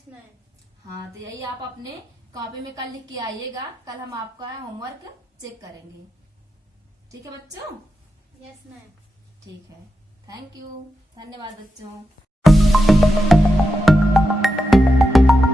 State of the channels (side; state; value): both; normal; correlation 0.88